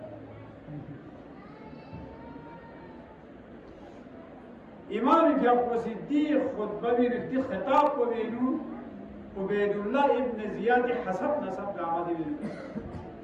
امام کیا صدیق خطبہ بھی رکھتی خطاب کو بینو عبید اللہ ابن زیاد حسب نصب لعمد بھی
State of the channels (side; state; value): both; identical; correlation 1.00